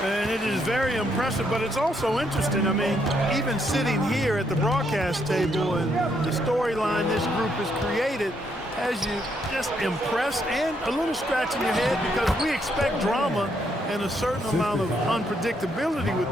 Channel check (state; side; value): normal; both; correlation 0.75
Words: And it is very impressive, but it's also interesting. I mean, even sitting here at the broadcast table and the storyline this group has created has you just impressed and a little scratch in your head because we expect drama and a certain amount of unpredictability with